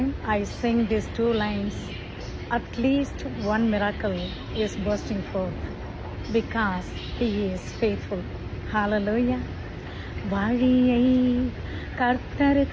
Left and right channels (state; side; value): identical; both; correlation 1.00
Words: I sing these two lines, at least one miracle is bursting forth because He is faithful. Hallelujah. வழியை